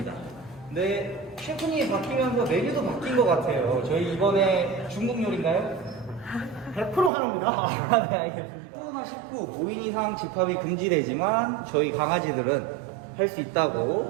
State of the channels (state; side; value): drops out; left; at 7.1 s